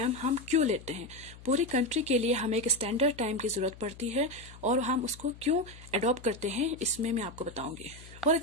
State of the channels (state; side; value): noise; left; hum, 18 dB below the sound